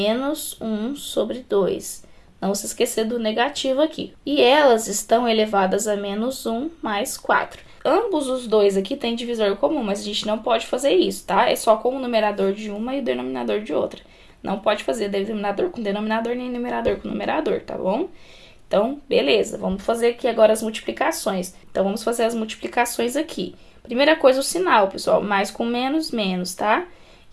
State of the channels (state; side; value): identical; both; correlation 1.00